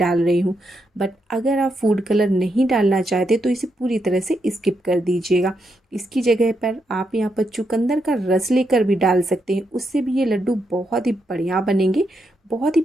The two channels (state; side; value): normal; both; correlation 0.81